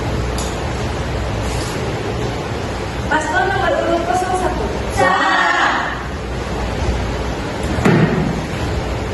Paslon nomor urut 01. Salah.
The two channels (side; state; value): both; identical; correlation 1.00